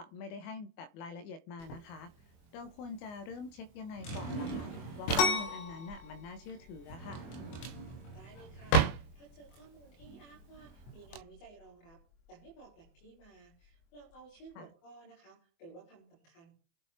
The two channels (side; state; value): right; late; 24 ms